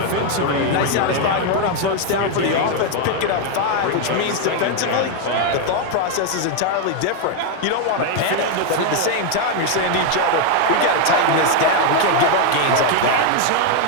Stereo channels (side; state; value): both; different; correlation 0.01